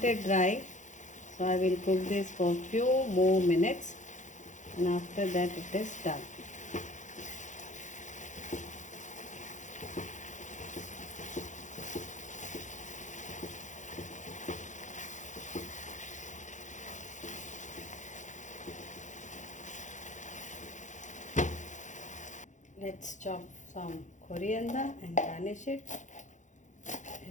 it dry, so I will cook this for few more minutes, and after that it is done. Let's chop some coriander and garnish it.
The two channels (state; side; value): late; right; 0.36 ms